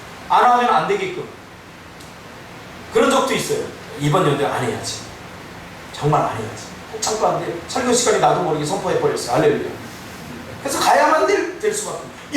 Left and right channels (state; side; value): identical; both; correlation 1.00